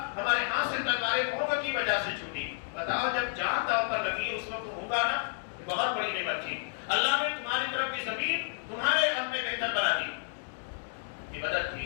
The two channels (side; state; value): right; silent; digital silence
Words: ہمارے ہاتھ سے تلواریں ہوگا کی وجہ سے چھوٹی. بتاؤ جب جان داؤ پر لگی اس وقت ہوگا نا، بہت بڑی نعمت تھی. اللہ نے تمہاری طرف کی زمین تمہارے حق میں بہتر بنا دی، یہ مدد